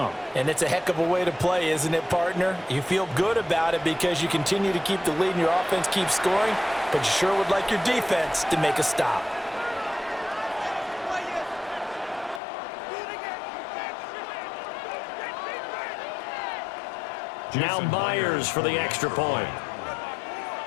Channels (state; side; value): drops out; right; at 12.4 s